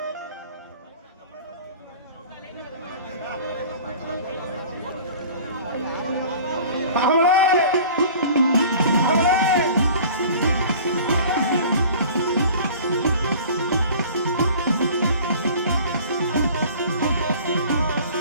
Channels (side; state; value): both; inverted; correlation -0.44